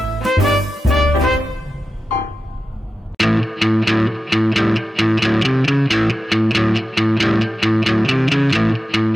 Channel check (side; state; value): both; normal; correlation 0.93